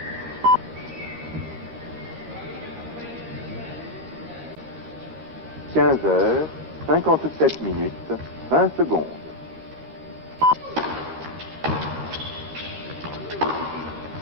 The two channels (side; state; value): left; late; 13 ms